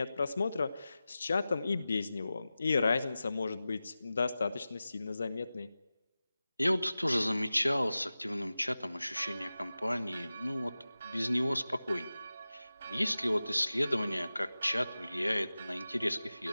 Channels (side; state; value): both; inverted; correlation -0.95